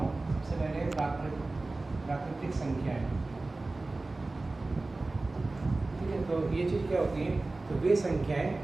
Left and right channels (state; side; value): quieter; left; 3.2 dB